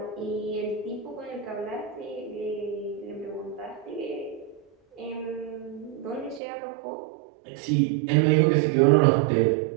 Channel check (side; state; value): left; drops out; at 6.4 s